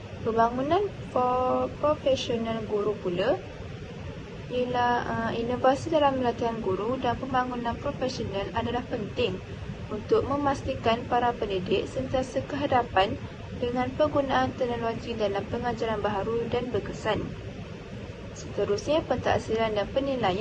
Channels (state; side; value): identical; both; correlation 1.00